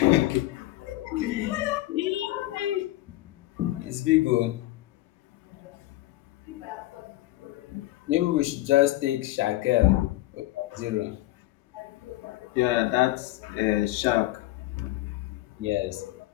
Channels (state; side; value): quieter; right; 17.1 dB